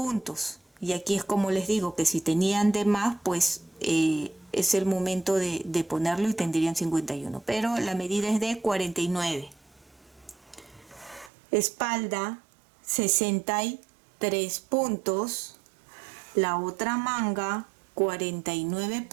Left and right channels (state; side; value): drops out; left; at 11.3 s